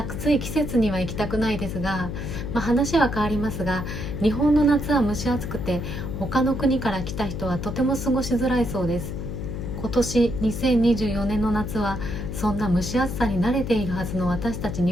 節には行きたくないですが、話は変わりますが、日本の夏は蒸し暑くて他の国から来た人はとても過ごしづらいそうです。今年2024年の夏はそんな蒸し暑さに慣れているはずの私たち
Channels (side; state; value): left; noise; hum, 5 dB below the sound